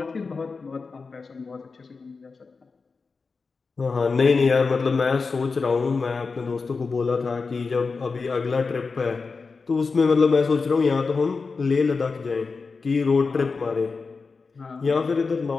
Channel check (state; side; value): quieter; right; 4.5 dB